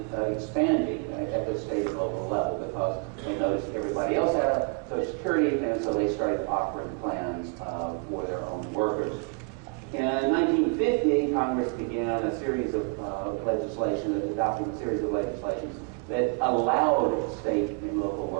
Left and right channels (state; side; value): quieter; left; 36.6 dB